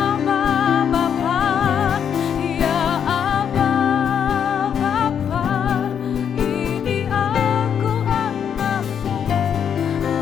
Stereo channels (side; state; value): right; quieter; 8.1 dB